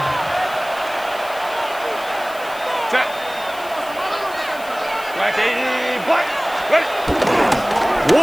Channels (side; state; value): left; noise; hiss, 18 dB below the sound